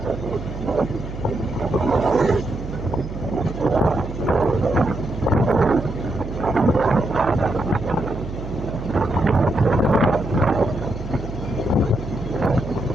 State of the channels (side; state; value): right; noise; hum, 9 dB below the sound